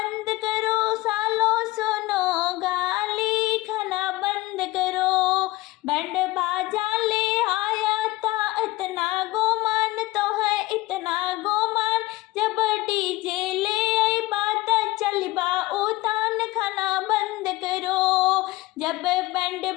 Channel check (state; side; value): quieter; right; 19.4 dB